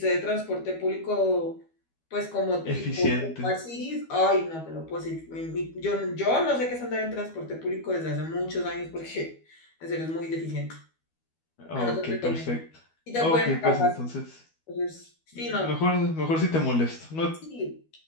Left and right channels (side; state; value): right; late; 12 ms